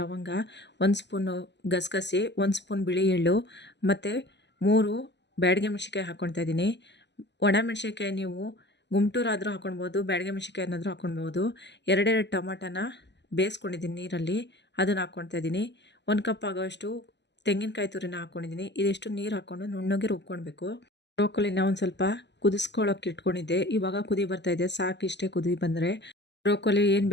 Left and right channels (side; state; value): right; late; 0.51 ms